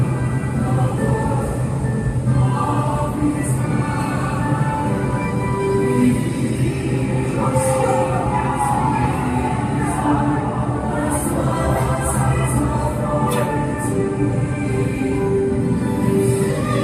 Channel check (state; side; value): identical; both; correlation 1.00